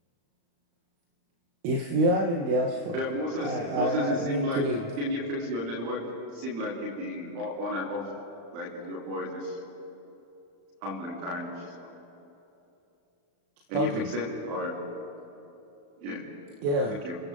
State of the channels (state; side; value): late; left; 35 ms